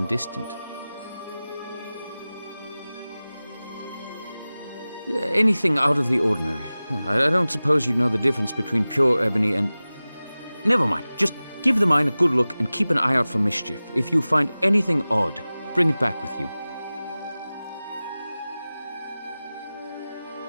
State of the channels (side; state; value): both; inverted; correlation -0.97